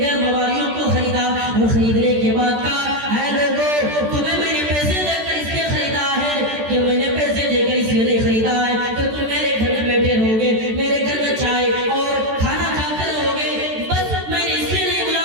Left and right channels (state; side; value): late; left; 14 ms